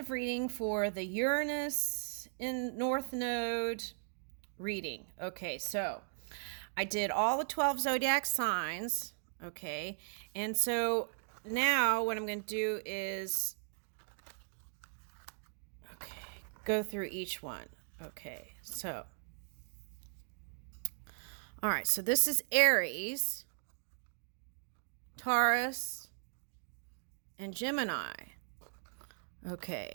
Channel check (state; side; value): silent; left; digital silence